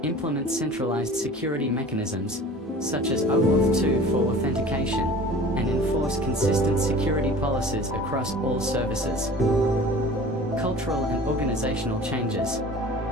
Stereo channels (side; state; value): both; normal; correlation 0.42